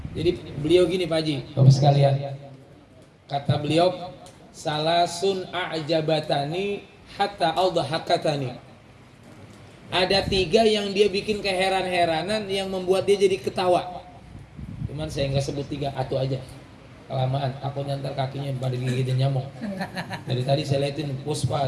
Jadi beliau gini Pak Haji, Bapak sekalian, kata beliau, salasun a'jabatani hatta aldahakatani. Ada 3 yang dia bikin keheran-heranan yang membuat dia jadi ketawa. Cuman saya nggak sebut 3, atau aja kelamaan, aku nyantar kakinya pada gigitin nyamuk. Dari tadi saya liatin Puspa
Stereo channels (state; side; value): identical; both; correlation 1.00